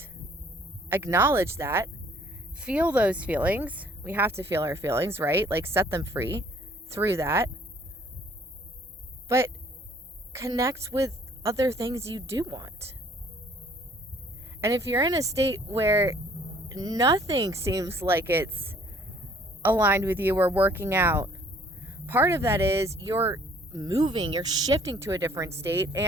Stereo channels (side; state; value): both; normal; correlation 0.58